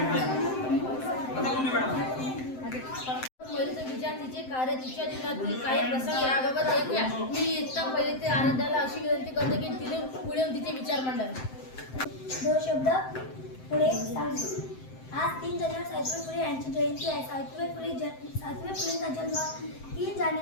पहिलेचं विचार, तिचे कार्य, तिच्या जीवनातील काही प्रसंग याबाबत ऐकूया। मी इतका पहिले ते आराध्याला अशी विनंती करते की तिने पुढे येऊन तिचे विचार मांडावे। दोन शब्द पुढे सांगतो। आज 3 जानेवारी सावित्रीबाई फुले यांची जयंती आहे। सावित्रीबाई फुलेंचा जन्म 3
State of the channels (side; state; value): right; late; 7.7 ms